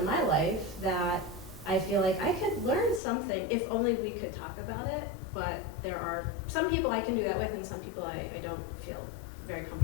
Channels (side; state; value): right; drops out; at 3.0 s